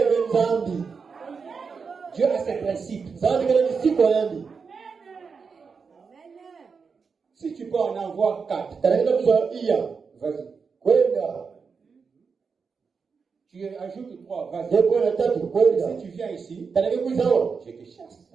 Dieu a ses principes. Si tu peux en avoir 4, vas-y. Tu ajoutes 3, vas-y. Si tu viens ici, je te chasse.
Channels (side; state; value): left; quieter; 5.4 dB